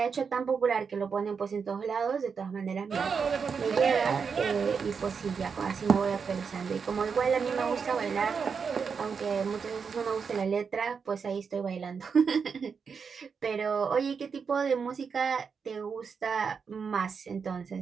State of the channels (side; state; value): left; quieter; 5.9 dB